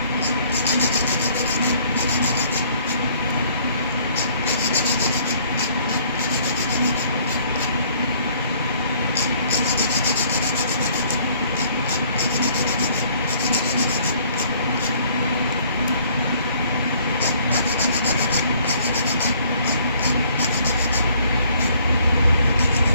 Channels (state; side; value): inverted; both; correlation -0.61